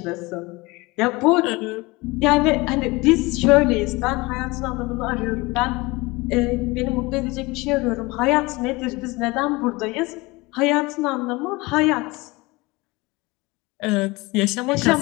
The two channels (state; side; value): quieter; right; 23.3 dB